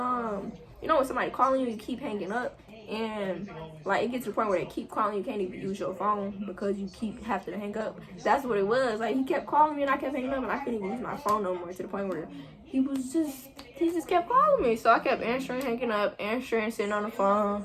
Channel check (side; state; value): both; identical; correlation 1.00